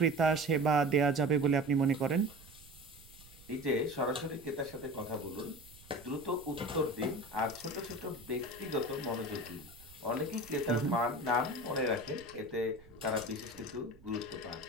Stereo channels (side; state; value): right; noise; rumble, 22 dB below the sound